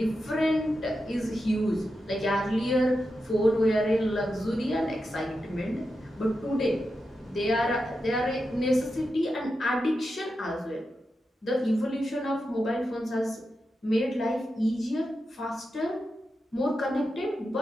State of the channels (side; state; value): both; normal; correlation 0.89